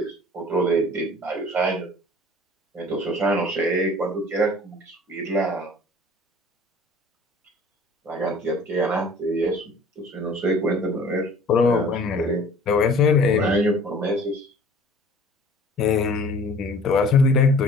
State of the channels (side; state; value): both; normal; correlation 0.49